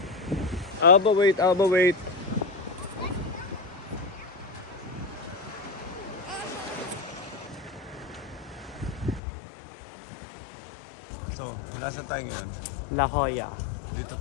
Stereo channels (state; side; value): drops out; right; at 9.2 s